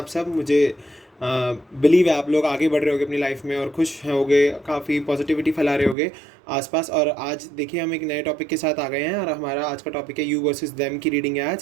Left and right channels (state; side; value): drops out; left; at 6.0 s